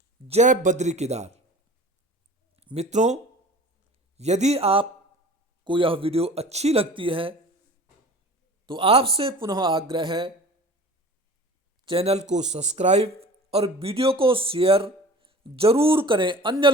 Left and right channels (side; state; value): both; normal; correlation 0.41